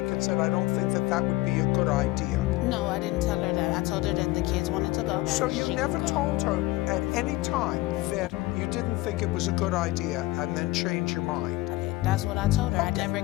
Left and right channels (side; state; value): right; quieter; 19.3 dB